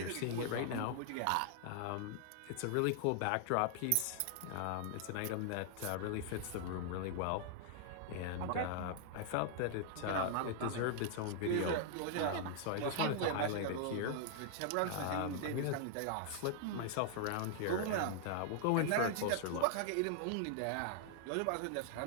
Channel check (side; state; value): both; different; correlation -0.01